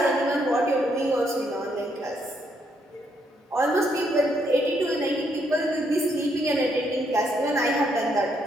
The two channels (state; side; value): normal; both; correlation 0.74